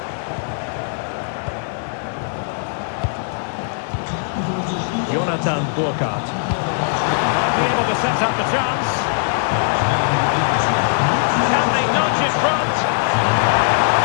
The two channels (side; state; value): right; silent; digital silence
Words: Jonathan Burkhardt. Be able to set up the chance. Can they nudge it front?